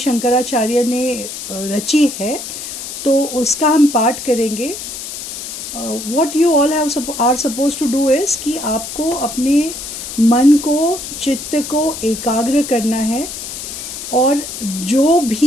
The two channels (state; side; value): noise; left; hiss, 8 dB below the sound